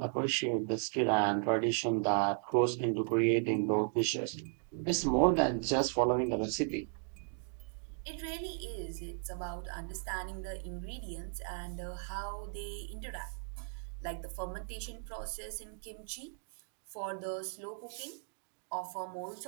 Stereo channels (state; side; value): silent; left; 54 dB below the other